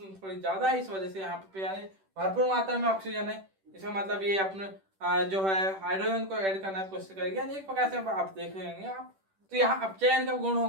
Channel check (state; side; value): late; left; 10 ms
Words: थोड़ी ज्यादा है, इस वजह से यहाँ पे यानी भरपूर मात्रा में ऑक्सीजन है। इसका मतलब ये अपने जो है हाइड्रोजन को ऐड करने की कोशिश करेगी, एक प्रकार से आप देख लेंगे आप, तो यहाँ अपचयन का गुण